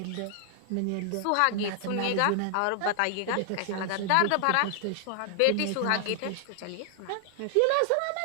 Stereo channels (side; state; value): both; different; correlation 0.00